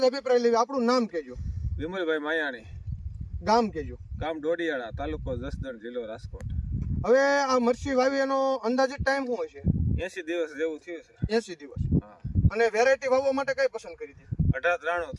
અભિપ્રાય લેવી। આપણું નામ કહેજો। વિમલભાઈ માયાણી, ગામ કહેજો। ગામ ડોડિયાળા, તાલુકો જસદણ, જિલ્લો રાજકોટ। હવે આ મરચી વાવી એનો અંદાજિત ટાઈમ શું હશે? 80 દિવસ જેવું થયું છે। 80 દિવસ। હા, અને વેરાયટી વાવવા માટે કઈ પસંદ કરી હતી? 1893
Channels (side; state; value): both; identical; correlation 1.00